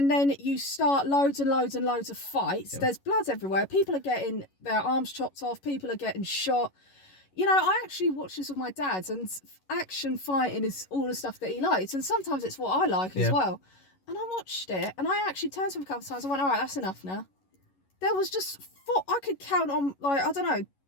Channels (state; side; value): late; right; 11 ms